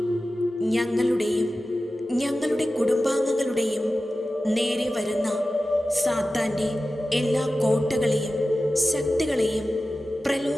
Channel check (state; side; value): normal; both; correlation 0.95